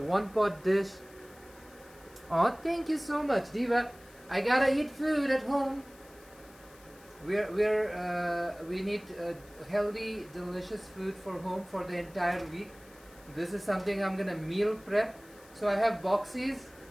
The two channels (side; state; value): left; noise; hiss, 25 dB below the sound